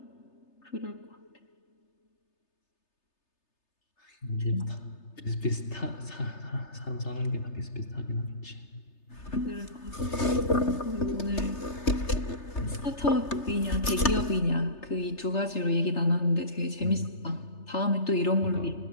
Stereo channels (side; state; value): right; late; 3.3 ms